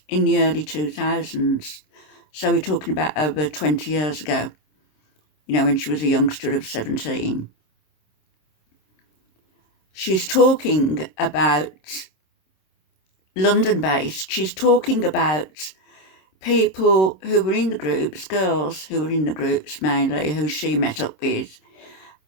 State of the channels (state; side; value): late; right; 26 ms